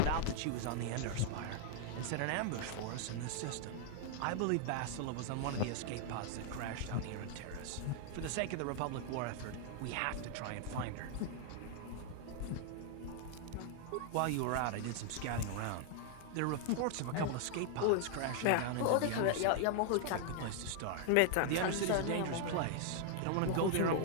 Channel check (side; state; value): both; different; correlation 0.00